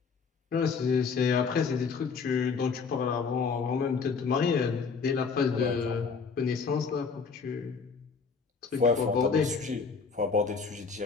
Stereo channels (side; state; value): right; quieter; 5.3 dB